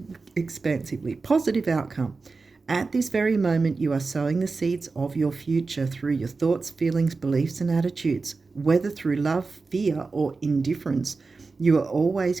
expansively. Positive outcome. At this very moment, you are sowing the seeds of your future through your thoughts, feelings, beliefs, and attitudes. Whether through love, fear, or indifference, you are always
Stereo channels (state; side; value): quieter; left; 4.1 dB